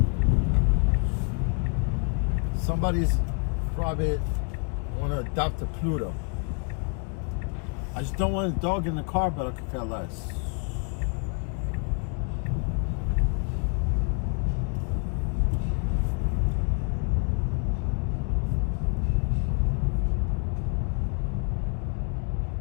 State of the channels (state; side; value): quieter; right; 39.9 dB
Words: Somebody's probably want to adopt a Pluto. I just don't want a dog in the car, but I could care less.